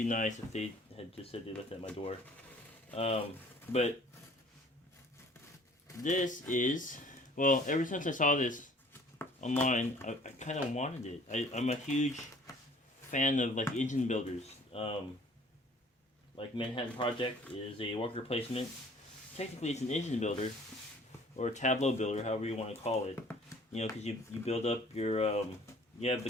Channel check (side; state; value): both; normal; correlation 0.53